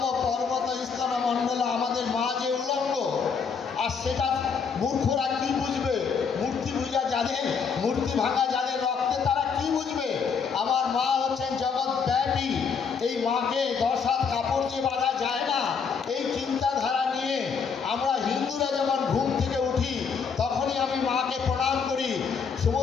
পর্বত স্তন মণ্ডল, আমাদের মা যে উলঙ্গ, আর সেটা মূর্খরা কি বুঝবে? মূর্তি পূজা যাদের, মূর্তি ভাঙা যাদের রক্তে, তারা কি বুঝবে? আমার মা হচ্ছেন জগৎ ব্যাপী, এই মাকে 10 হাত কাপড় যে বাঁধা যায় না, এই চিন্তাধারা নিয়ে আমরা হিন্দুরা যখন ঘুম থেকে উঠি তখনই আমি মাকে প্রণাম করি।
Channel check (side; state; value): right; quieter; 6.0 dB